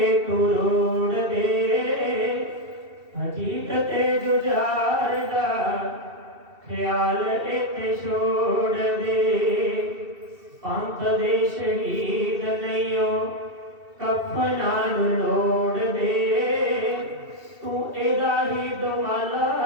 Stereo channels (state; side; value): late; left; 2.7 ms